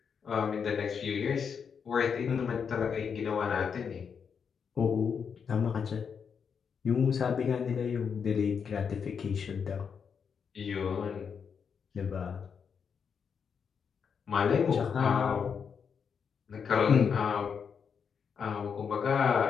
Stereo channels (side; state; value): right; quieter; 6.6 dB